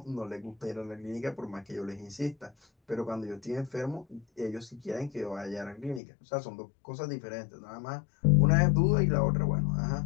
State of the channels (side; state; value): right; drops out; at 6.0 s